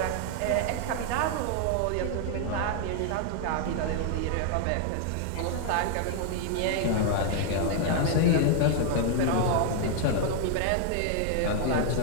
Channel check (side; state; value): both; different; correlation 0.00